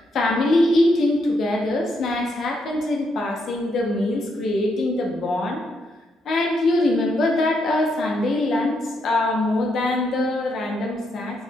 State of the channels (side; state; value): both; normal; correlation 0.78